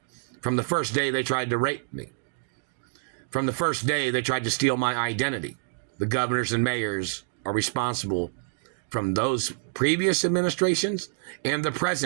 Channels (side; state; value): left; silent; digital silence